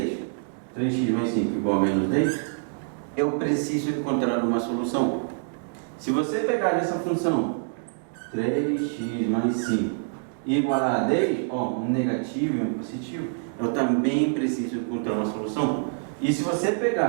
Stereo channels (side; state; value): left; silent; digital silence